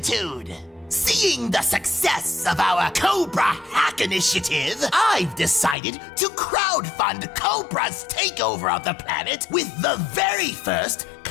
Seeing the success of our Cobra Hack Initiative, I've decided to crowdfund Cobra's takeover of the planet with the very first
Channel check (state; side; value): drops out; right; at 5.8 s